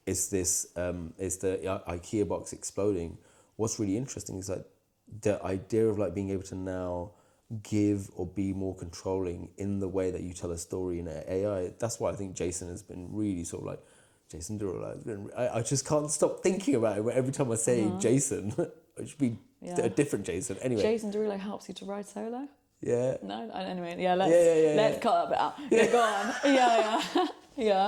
it's this it's the IKEA box exploding. What's really interesting is like the idea of like being able to now give or be more controlling in the way that you tell a story in AI. That's why I think Jason has been really sort of like, Jason Derulo has been, I just can't stop thinking about it. Every time I say Jason, it should be a different Jason. Anyway, Jason Derulo helps you to ride solo. Yeah. No. Anyway, let's cut that bit out. Yeah, go on.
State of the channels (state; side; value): identical; both; correlation 1.00